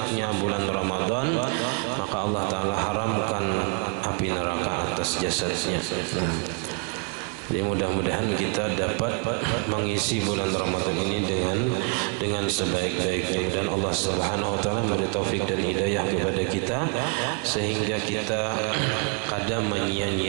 bulan Ramadan, maka Allah Taala haramkan api neraka atas jasadnya. Nah, jadi mudah-mudahan kita dapat mengisi bulan Ramadan ini dengan sebaik-baiknya, dan Allah Subhanahu wa taala memberi taufik dan hidayah kepada kita sehingga kita kada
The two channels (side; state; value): left; quieter; 35.3 dB